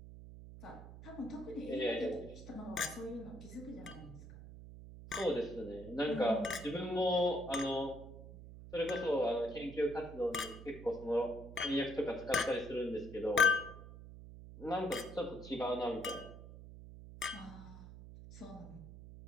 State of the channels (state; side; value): noise; right; hum, 14 dB below the sound